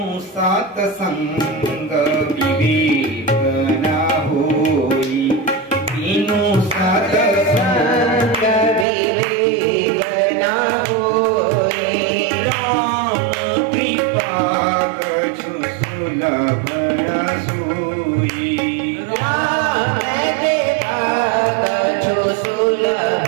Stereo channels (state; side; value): drops out; left; at 8.8 s